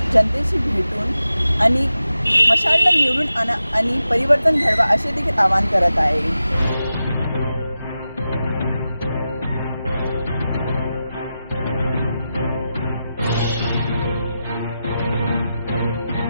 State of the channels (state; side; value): inverted; both; correlation -0.92